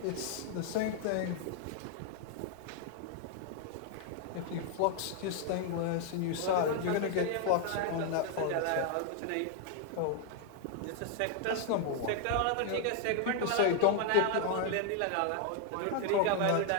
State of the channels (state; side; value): different; both; correlation 0.00